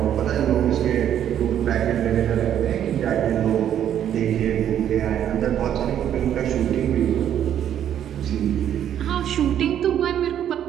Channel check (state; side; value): quieter; left; 10.1 dB